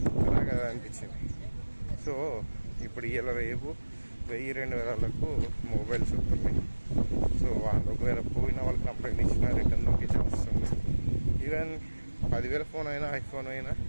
అలా కదా అనిపించింది. సో ఇప్పుడు ఇలా రేపు 1000-2000లకు మొబైల్స్ వస్తున్నాయి. సో వాళ్ళు ఒకవేళ పోయిన వాళ్ళు కంప్లైంట్ ఇచ్చినా రిటర్న్ లొకేషన్ వస్తుంది. ఈవెన్ 10,000 ఫోన్ అయినా, ఐఫోన్ అయినా,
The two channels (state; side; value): inverted; both; correlation -1.00